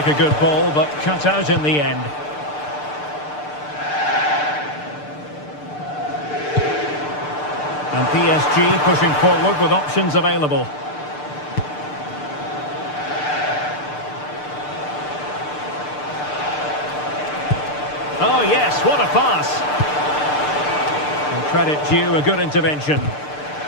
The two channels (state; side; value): late; right; 6.7 ms